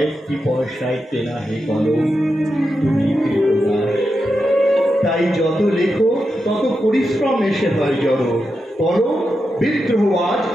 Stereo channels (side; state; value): both; normal; correlation 0.87